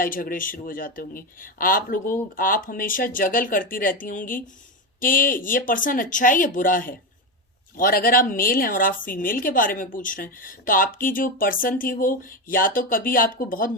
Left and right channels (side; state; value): both; normal; correlation 0.14